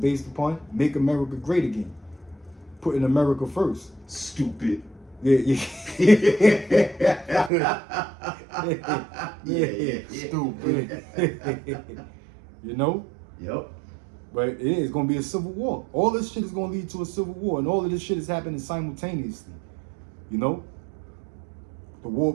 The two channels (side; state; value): left; drops out; at 7.5 s